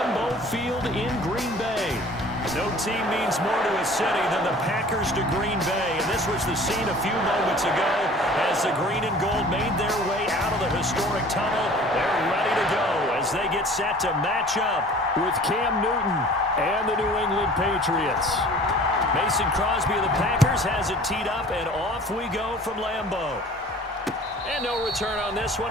Field in Green Bay. No team means more to a city than the Packers to Green Bay, and this was the scene a few moments ago as the green and gold made their way out of the historic tunnel. They're ready to go as they get set to match up with Cam Newton and the New England Patriots. Mason Crosby of the Packers has it teed up, and off we go from Lambeau. And no return on this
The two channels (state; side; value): normal; both; correlation 0.47